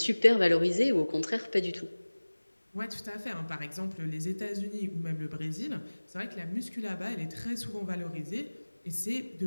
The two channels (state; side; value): inverted; both; correlation -1.00